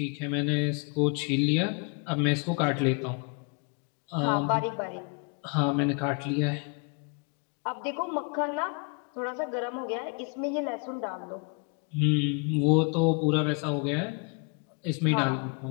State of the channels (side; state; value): right; quieter; 35.2 dB